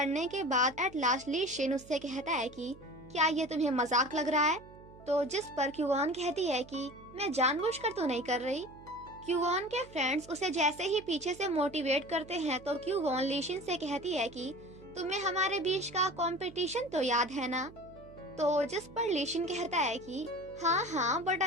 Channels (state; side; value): noise; right; hum, 20 dB below the sound